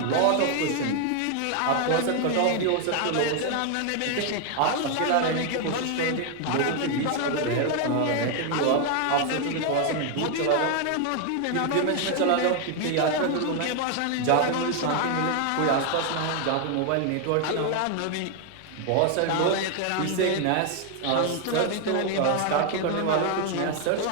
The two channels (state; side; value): different; both; correlation 0.01